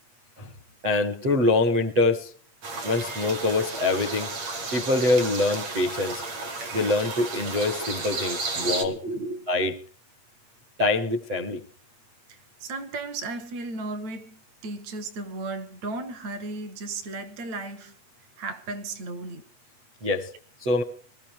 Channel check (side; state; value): left; late; 8.6 ms